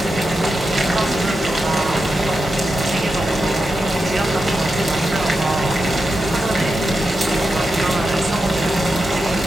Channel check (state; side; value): normal; both; correlation 0.89